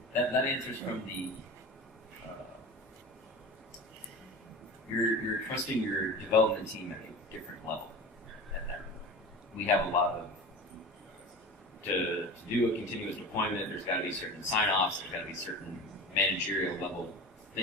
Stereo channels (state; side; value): normal; both; correlation 0.33